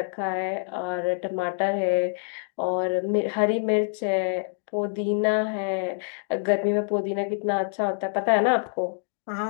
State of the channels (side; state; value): right; silent; digital silence